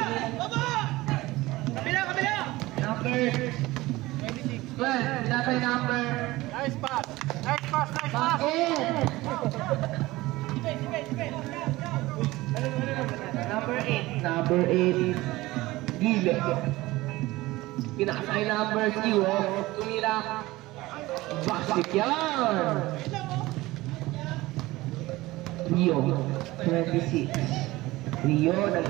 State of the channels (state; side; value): quieter; left; 19.1 dB